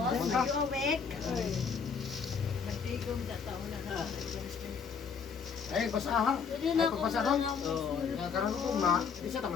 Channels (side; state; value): right; quieter; 6.1 dB